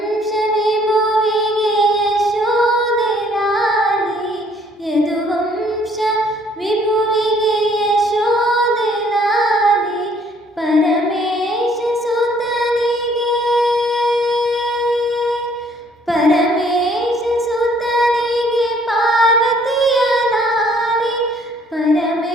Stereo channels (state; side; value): normal; both; correlation 0.62